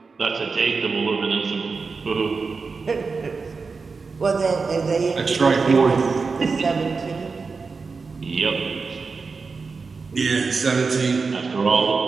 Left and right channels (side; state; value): left; quieter; 4.6 dB